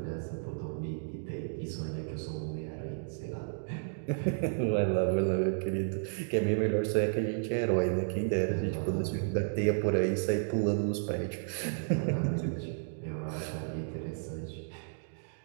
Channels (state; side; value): silent; left; digital silence